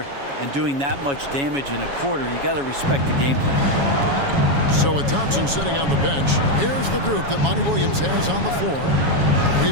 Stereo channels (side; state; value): left; late; 7.2 ms